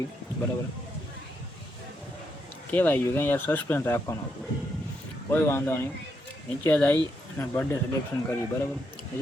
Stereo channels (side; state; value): both; normal; correlation 0.79